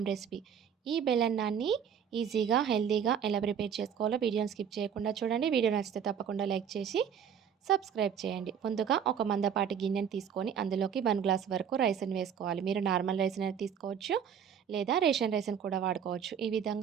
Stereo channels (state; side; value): quieter; left; 8.0 dB